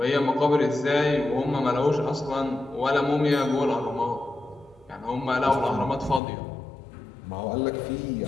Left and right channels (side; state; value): right; drops out; at 6.2 s